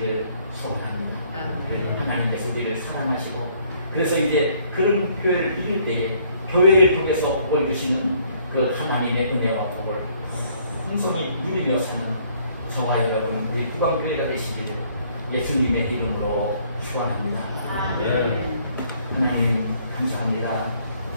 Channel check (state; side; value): inverted; both; correlation -0.63